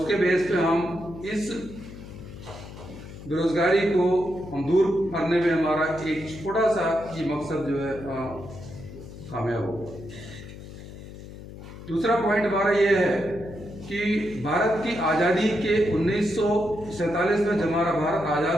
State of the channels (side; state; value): left; noise; hum, 14 dB below the sound